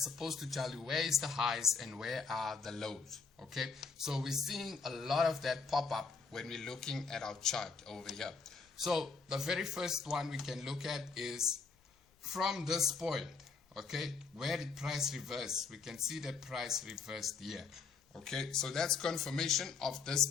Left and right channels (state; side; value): quieter; right; 5.1 dB